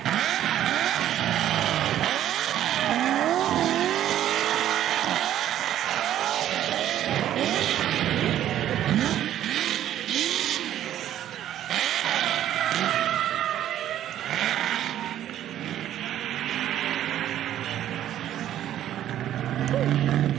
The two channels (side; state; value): left; quieter; 11.7 dB